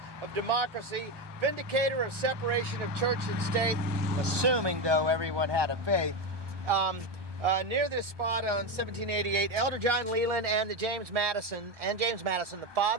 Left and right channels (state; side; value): late; left; 1.2 ms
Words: of democracy, vindicator of separation of church and state, assuming though everyone had a faith. Near this spot on 1788, Elder John Leland and James Madison, the